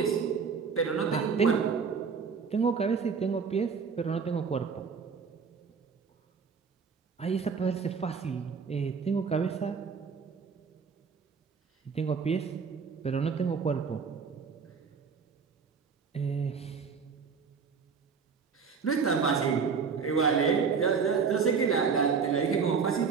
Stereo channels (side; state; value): left; quieter; 5.8 dB